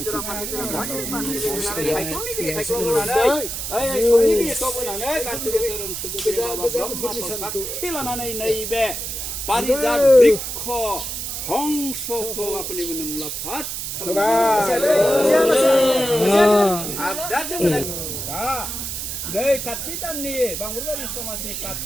लानानै नैबे पारिजात बृक्ष हंसखौ अपने मुलाम्फा नै काति दाननि बांगुरबारि समाजनि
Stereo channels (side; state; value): right; noise; hiss, 5 dB below the sound